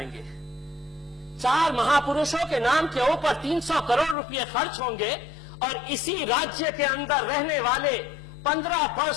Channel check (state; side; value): drops out; right; at 4.2 s